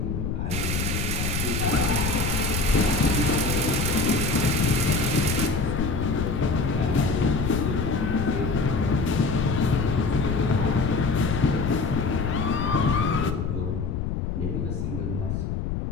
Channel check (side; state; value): left; noise; rumble, 2 dB below the sound